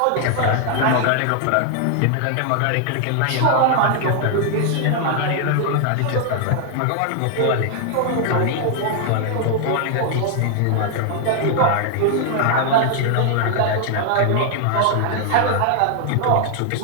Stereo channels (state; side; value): different; both; correlation 0.00